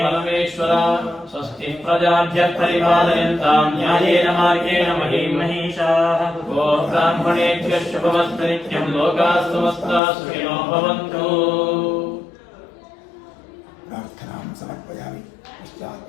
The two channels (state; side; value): drops out; right; at 10.0 s